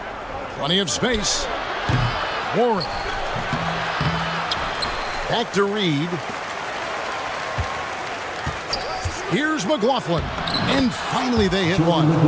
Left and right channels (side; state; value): both; identical; correlation 1.00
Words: Plenty of space. Warren. Back to Reed. Here's McLaughlin. And finally they hit one.